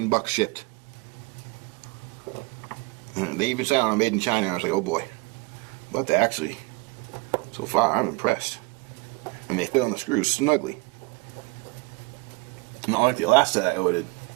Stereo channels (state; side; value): quieter; left; 26.5 dB